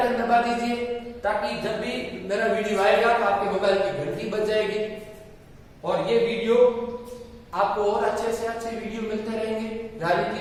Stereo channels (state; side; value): identical; both; correlation 1.00